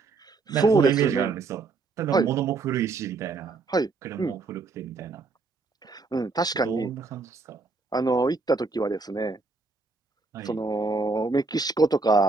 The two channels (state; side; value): quieter; left; 4.0 dB